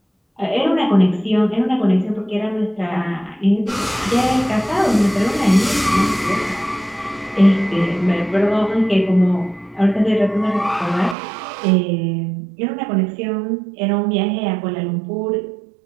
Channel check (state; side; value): drops out; left; at 11.2 s